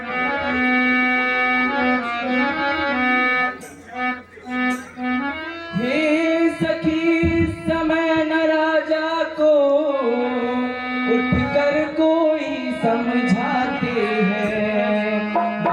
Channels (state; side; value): identical; both; correlation 1.00